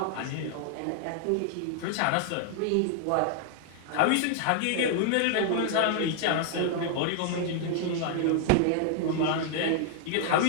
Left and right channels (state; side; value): different; both; correlation -0.01